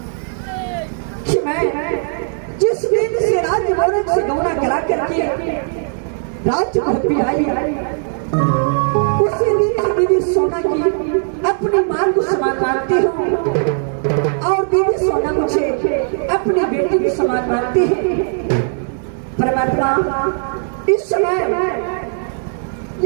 कि मैं जिस दिन से राज्य भवन से गौना करा करके राज्य भवन आई उसी दिन से दीदी सोना की अपनी मां को समान मानती हूँ और दीदी सोना मुझे अपनी बेटी के समान मानती है। परमात्मा इस समय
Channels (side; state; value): left; silent; 61 dB below the other